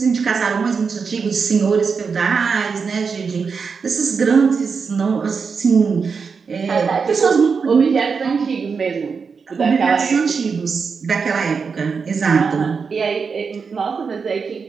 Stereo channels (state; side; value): quieter; left; 5.4 dB